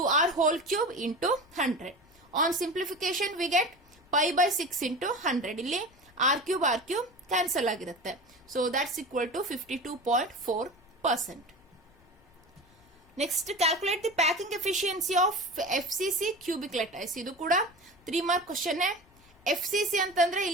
whole cube into 100. On simplification we get pi by 6 into 100. ಇಲ್ಲಿ r cube ಕ್ಯಾನ್ಸಲ್ ಆಗಿರುತ್ತೆ. So that's equal to 52.4%. Next calculate the packing efficiency of FCC cubic lattice. ಇದು ಕೂಡ 3 ಮಾರ್ಕ್ ಕ್ವಶನ್. FCC ಅಂತಂದ್ರೆ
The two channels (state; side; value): noise; left; rumble, 29 dB below the sound